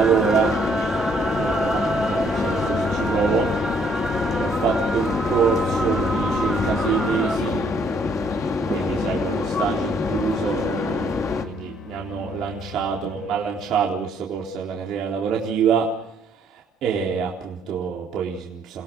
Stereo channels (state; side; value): normal; both; correlation 0.66